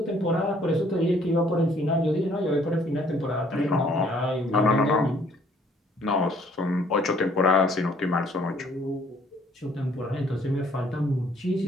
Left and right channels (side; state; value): both; normal; correlation 0.61